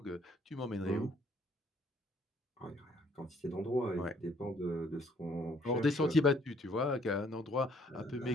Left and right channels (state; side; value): normal; both; correlation 0.64